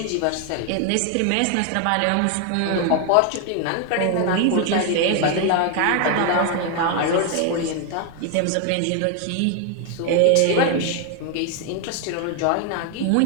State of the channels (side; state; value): both; different; correlation 0.01